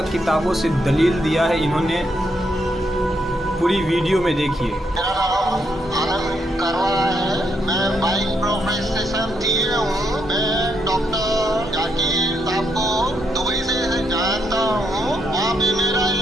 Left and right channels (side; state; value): both; normal; correlation 0.78